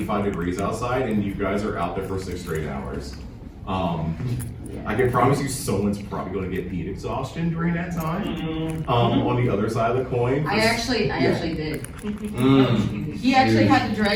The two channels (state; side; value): identical; both; correlation 1.00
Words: degrees outside and you guys are out there for 6 straight hours. I can promise you someone's probably going to get heat exhaustion during that time. On the other side of the coin. I actually did. He actually had to